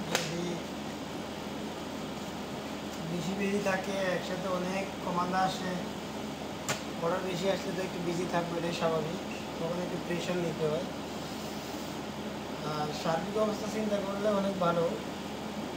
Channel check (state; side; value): identical; both; correlation 1.00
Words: যদি বেশি বিজি থাকে একসাথে অনেক কমান্ডা আসে, অর্ডার বেশি আসলে তো একটু বিজি থাকবে, এটাই স্বাভাবিক, তখন একটু প্রেশার নিতে হয়। আর সার্বিক অবস্থা চিন্তা করলে অনেক ভালো,